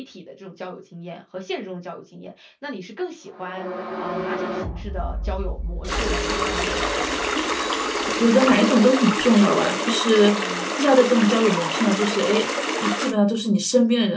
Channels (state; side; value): identical; both; correlation 1.00